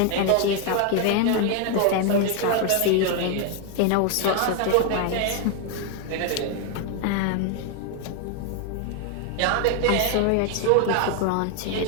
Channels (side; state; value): both; different; correlation 0.01